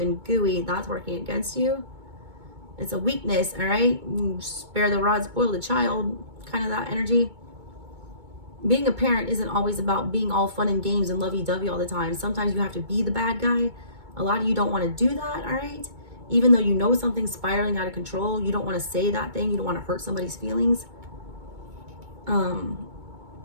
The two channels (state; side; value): late; left; 2.2 ms